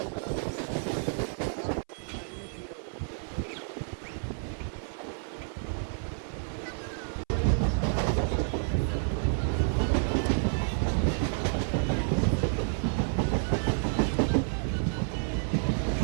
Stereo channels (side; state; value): left; silent; 58 dB below the other